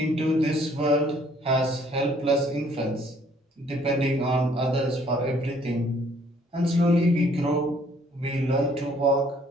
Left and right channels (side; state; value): both; normal; correlation 0.62